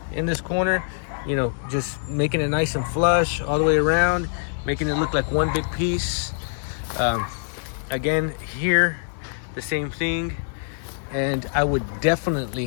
in this corner, you know, just making it nice and flush all the way around, making it look like one big piece. Again, here, the same thing. And I would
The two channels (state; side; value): silent; right; 59 dB below the other